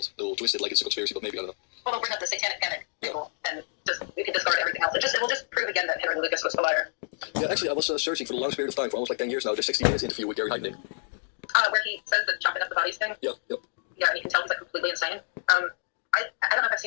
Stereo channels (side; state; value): right; silent; digital silence